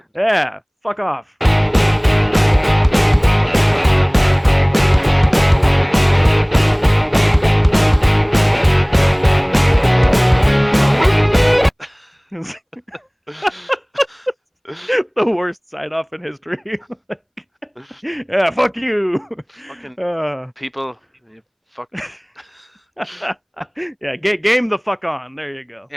Yeah, fuck off. The worst sign off in history. Yeah, fuck you. fucking people, you fuck. Yeah, game the fuck on. There you go.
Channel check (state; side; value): identical; both; correlation 1.00